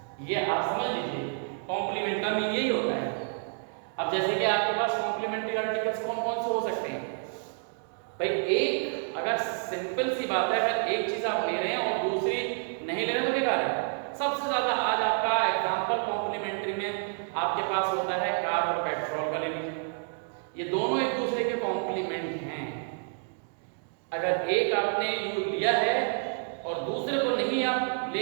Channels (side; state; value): left; silent; 57 dB below the other